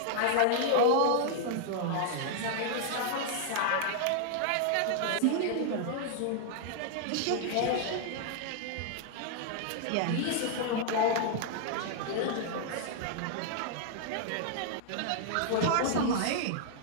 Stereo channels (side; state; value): both; different; correlation -0.01